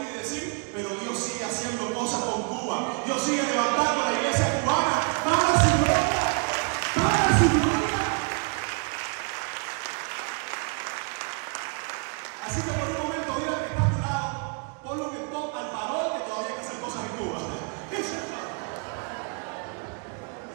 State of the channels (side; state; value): left; quieter; 35.8 dB